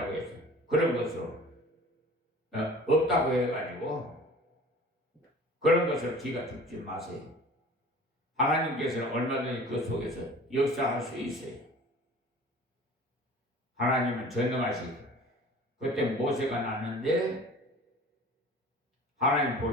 해서 그런 것을 없다고 해가지고 그런 것을 기가 죽지 마세요. 하나님께서는 얼마든지 그 속에서 역사할 수 있어요. 하나님은 전능하시고, 그때 모세가 났는데 하나님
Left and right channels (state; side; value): normal; both; correlation 0.44